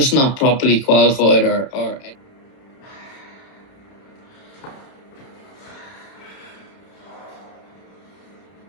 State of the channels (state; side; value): late; right; 31 ms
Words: not properly qualified or.